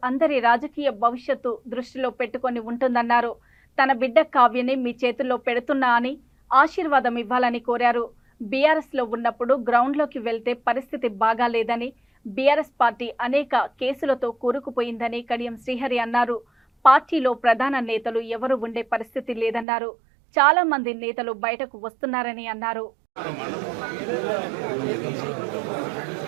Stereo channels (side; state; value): left; drops out; at 19.7 s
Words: అందరి రాజకీయ భవిష్యత్తు దృష్టిలో పెట్టుకొని ఉంటుందన్నారు. తన బిడ్డ కావ్యని మీ చేతుల్లో పెడుతున్నా అని ఆశీర్వాదం ఇవ్వాలని కోరారు. బీఆర్ఎస్ లో ఉన్నప్పుడు గ్రౌండ్లోకి వెళ్తే పరిస్థితి బాగాలేదని, బీఆర్ఎస్ పార్టీ అనేక కేసులతో కూరుకుపోయిందని కడియం శ్రీహరి అన్నారు. పార్టీలో ప్రధాన నేతలు ఎవరు ఉండే పరిస్థితి లేదన్నారు. చాలా మంది నేతలు బయటకు వస్తున్నారని అన్నారు.